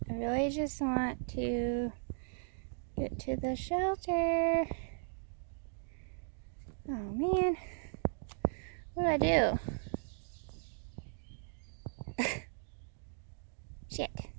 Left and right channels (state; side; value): silent; left; digital silence